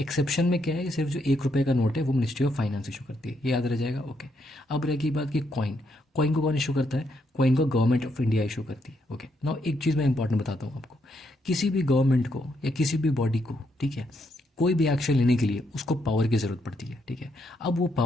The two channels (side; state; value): both; normal; correlation 0.77